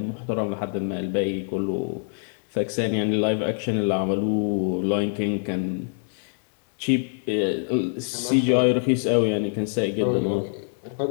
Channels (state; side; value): silent; right; digital silence